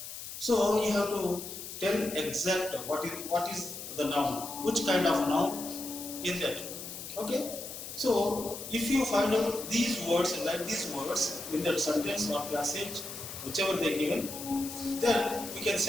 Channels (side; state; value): left; noise; hiss, 10 dB below the sound